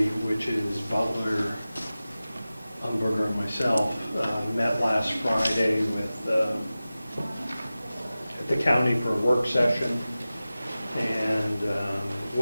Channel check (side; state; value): both; inverted; correlation -0.96